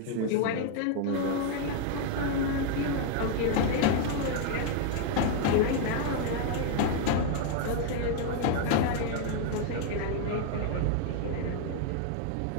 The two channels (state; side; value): different; both; correlation 0.00